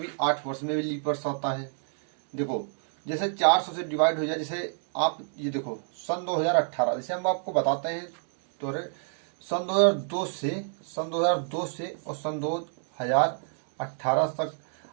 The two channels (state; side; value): silent; left; 59 dB below the other